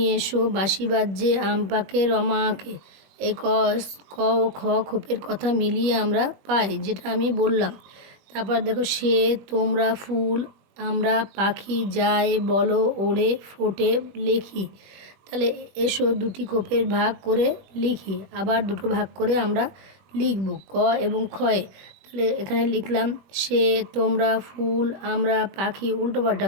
এসো, বাঁশি বাজছে, আম পাকে, রমা আঁকে। এই ক ও খ খোপের কথা মিলিয়ে আমরা পাই, যেটা আমি বললাম। তারপর দেখো সে, তোমরা, ফুল, আমরা, পাখি, যায়, বলো, ওড়ে, ফোটে, লেখি। তাহলে এসো দুটি খোপের ভাগ করে লিখি, আবার দুটো ভাগ করে আমরা লিখব ক এবং খয়ে। তাহলে এখানে লিখলাম সে, তোমরা, ফুল, আমরা, পাখি, উল্টোপাল্টা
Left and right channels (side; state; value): left; late; 21 ms